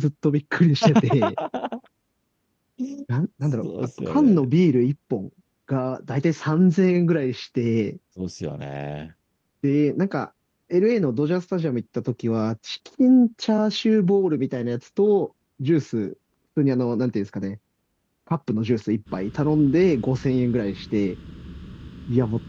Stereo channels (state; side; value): identical; both; correlation 1.00